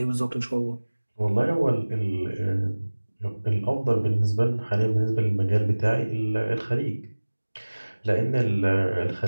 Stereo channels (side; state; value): both; inverted; correlation -1.00